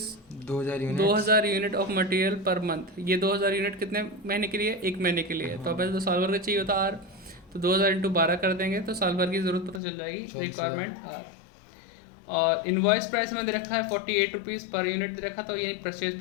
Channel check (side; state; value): right; drops out; at 9.8 s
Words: 2000 unit of material per month. ये 2000 यूनिट कितने महीने के लिए? एक महीने के लिए है। तो अब तो साल भर का चाहिए होता आर, तो 2000 इंटू 12 कर देंगे तो साल भर की ज़रूरत पता चल जाएगी। Requirement R. और इनवॉइस प्राइस हमें दे रखा है 48 रुपीज़ पर यूनिट दे रखा, तो यानी परचेज